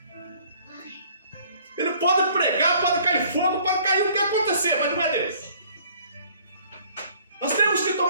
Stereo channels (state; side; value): inverted; both; correlation -0.56